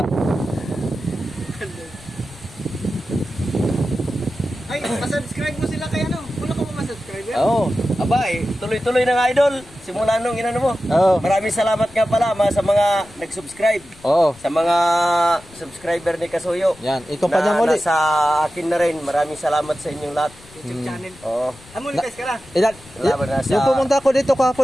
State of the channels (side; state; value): left; noise; rumble, 23 dB below the sound